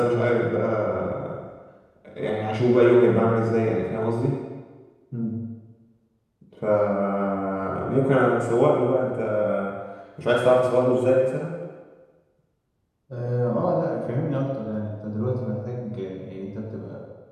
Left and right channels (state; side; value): identical; both; correlation 1.00